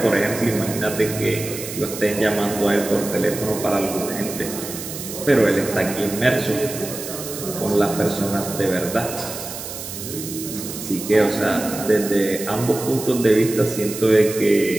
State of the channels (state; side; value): noise; right; hiss, 9 dB below the sound